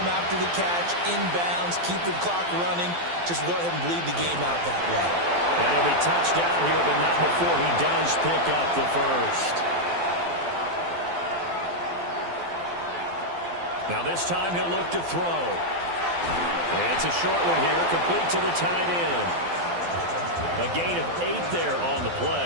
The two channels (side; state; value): left; late; 12 ms